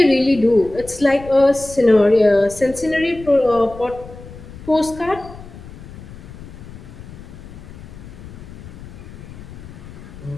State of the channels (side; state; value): left; noise; rumble, 16 dB below the sound